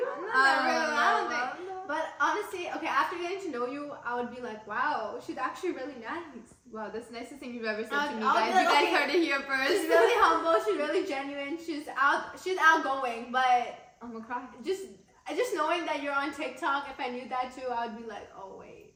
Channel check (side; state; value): both; identical; correlation 1.00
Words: I'm not that real. I don't think. I don't know. But honestly, okay, after getting to know you, I would be like, wow, she's actually really nice. Wow, that's the nicest thing you've ever said to me, I'll guys. be like, You guys okay, heard it here first. She's really humble. She's really genuine. She's outgoing. But I'm gonna cry. just knowing that you're on TikTok, if I knew that too, I would be like, oh wait.